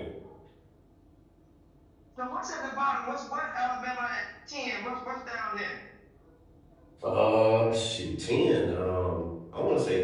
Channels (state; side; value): identical; both; correlation 1.00